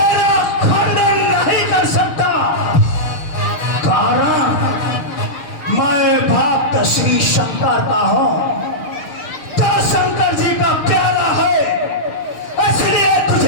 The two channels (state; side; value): late; right; 6.9 ms